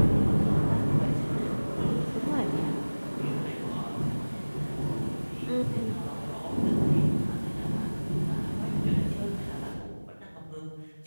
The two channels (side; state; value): both; inverted; correlation -1.00